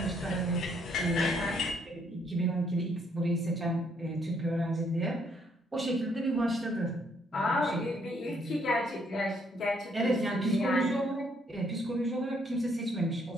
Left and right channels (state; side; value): normal; both; correlation 0.69